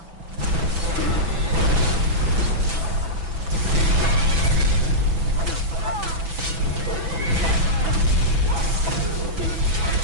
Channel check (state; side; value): late; left; 6.0 ms